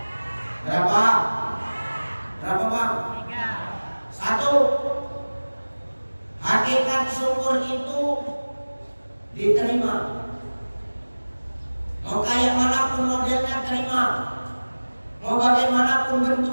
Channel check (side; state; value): both; inverted; correlation -1.00